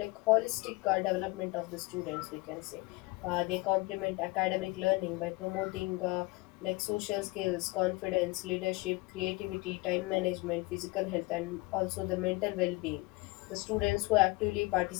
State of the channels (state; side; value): quieter; right; 23.7 dB